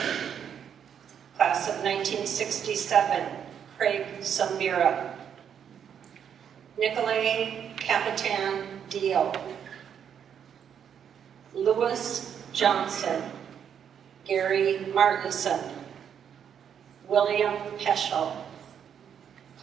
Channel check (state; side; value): quieter; left; 8.3 dB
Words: Class of 1967, Craig Samira. Nicolay Capitan Dio. Louis Johnson. Gary Martinson. William Peschel.